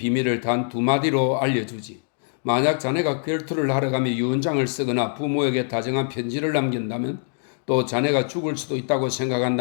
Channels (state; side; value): silent; right; 63 dB below the other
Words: 단 두 마디로 알려주지. 만약 자네가 결투를 하러 가며 유언장을 쓰거나 부모에게 다정한 편지를 남긴다면 또 자네가 죽을 수도 있다고